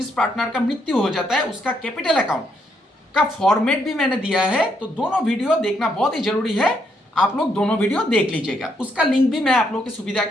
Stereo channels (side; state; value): both; normal; correlation 0.75